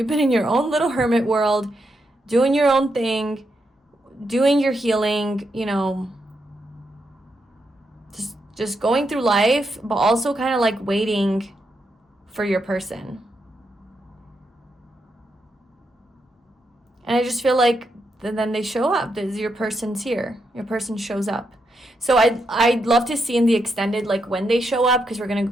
been in your own little hermit world, doing your own thing, doing your healing, just going through life, but also kind of like waiting for your person. And I just feel like then they show up. Your person's here. Your person shows up. So I'd love to see in the extended, like when they show up, because we're going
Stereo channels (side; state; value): both; normal; correlation 0.82